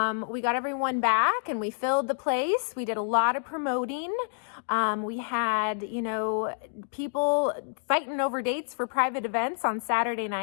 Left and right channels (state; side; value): silent; right; digital silence